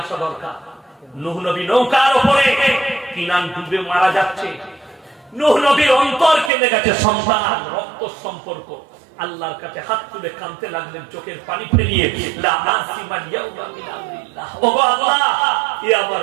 আসা দরকার। নূহ নবী নৌকার উপরে, কিনান ডুবে মারা যাচ্ছে, নূহ নবীর অন্তর কেঁদে গেছে, সন্তান, রক্ত সম্পর্ক। আল্লাহর কাছে হাত তুলে কাঁদতে লাগলেন, চোখের পানি ফেলিয়ে, লা আসিমা ইয়াউমা মিন আমরিল্লাহ। ওগো আল্লাহ, এ আমার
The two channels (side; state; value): left; drops out; at 6.5 s